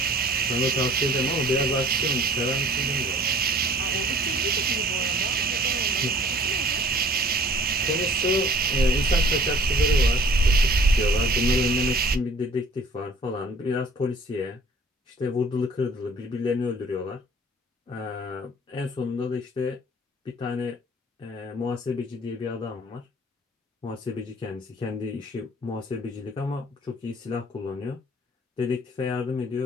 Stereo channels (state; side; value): normal; both; correlation 0.51